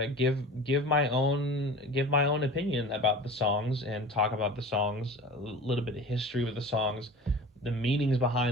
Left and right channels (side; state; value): both; normal; correlation 0.37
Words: give my own opinion about the songs and talk about the songs, a little bit of history with the songs, the meanings